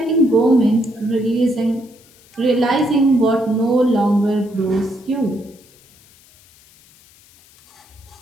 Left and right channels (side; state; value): left; noise; hiss, 28 dB below the sound